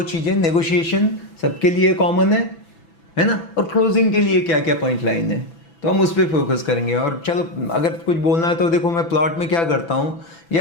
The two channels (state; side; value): late; right; 6.0 ms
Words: चीज़ें, नेगोशिएशन सबके लिए कॉमन है ना, और क्लोजिंग के लिए क्या क्या पॉइंट लाइन है, तो हम उस पर फोकस करेंगे। और चलो अगर कुछ बोलना है तो देखो, मैं प्लॉट में क्या करता हूँ,